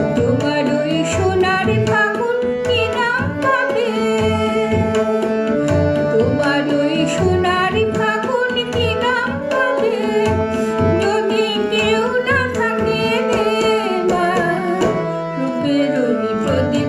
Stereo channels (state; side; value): identical; both; correlation 1.00